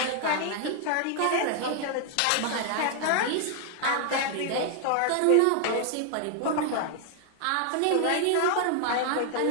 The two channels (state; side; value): different; both; correlation 0.00